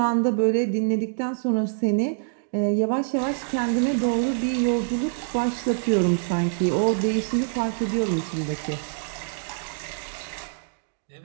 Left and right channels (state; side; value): silent; left; digital silence